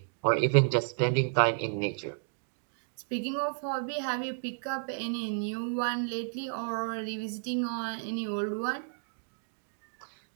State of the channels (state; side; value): silent; left; digital silence